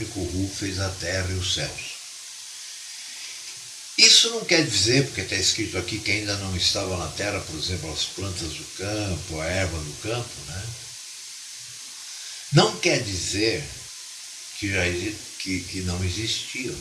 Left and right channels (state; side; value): identical; both; correlation 1.00